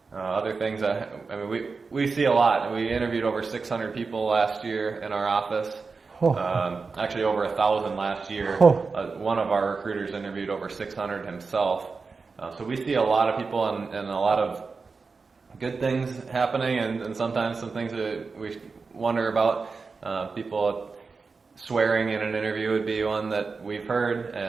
Other things, I mean, we see a lot. We interviewed over 600 people last year in our office. Actually over 1,000 last year. One of our recruiters interviewed over 600 himself. So we see a lot of people and a lot of good things happening, and sometimes some things that we wonder about. People swearing in an interview would be one that we've heard,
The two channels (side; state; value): left; quieter; 4.5 dB